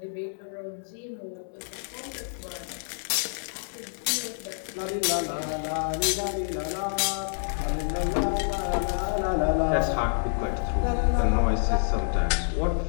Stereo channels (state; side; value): silent; right; 60 dB below the other